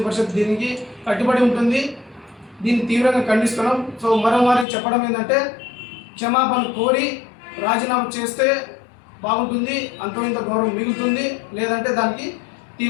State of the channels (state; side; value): drops out; right; at 4.7 s